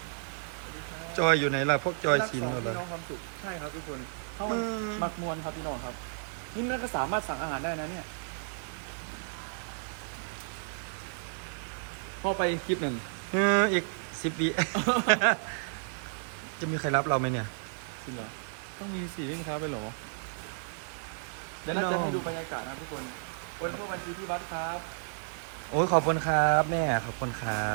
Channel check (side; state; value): left; silent; 56 dB below the other